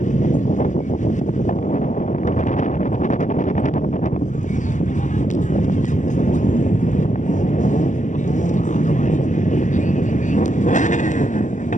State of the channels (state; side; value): late; right; 0.36 ms